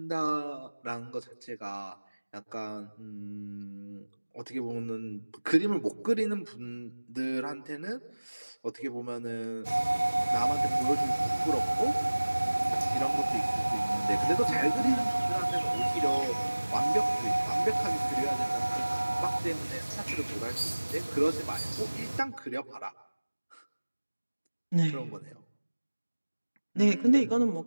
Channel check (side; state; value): both; inverted; correlation -1.00